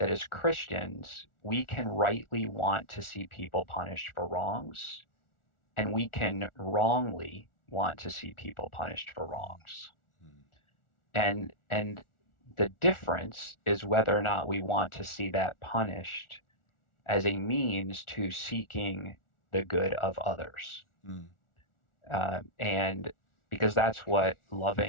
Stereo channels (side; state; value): right; late; 1.4 ms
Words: as Christians, we can rightly want to see people punished for wrongs, and we can wrongly want to see people punished for wrongs. Mm. And the difference is whether or not we want to see that punished as a means to seeking the good of others. Mm. And because that's what